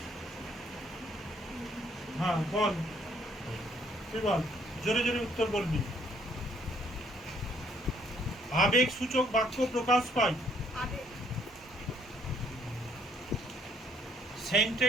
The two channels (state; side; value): normal; both; correlation 0.65